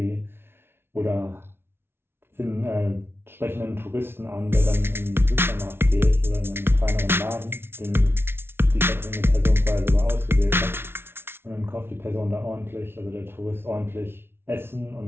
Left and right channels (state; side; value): late; left; 0.12 ms